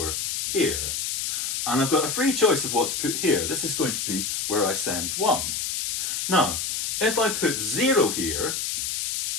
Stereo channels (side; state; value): left; noise; hiss, 1 dB below the sound